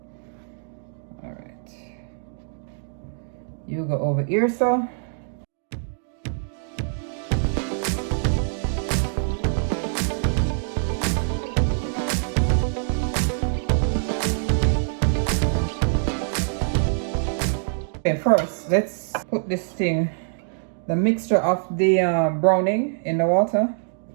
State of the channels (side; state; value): left; silent; digital silence